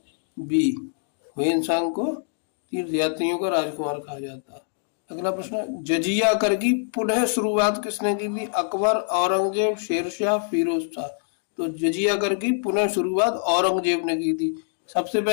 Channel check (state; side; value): silent; right; digital silence